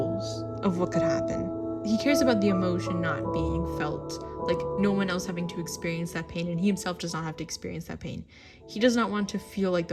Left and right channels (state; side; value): identical; both; correlation 1.00